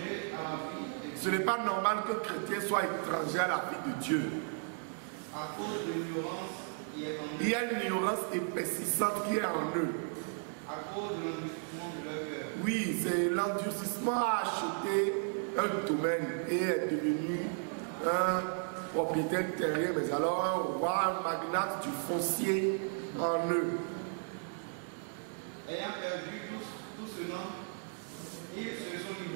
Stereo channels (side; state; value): left; silent; 55 dB below the other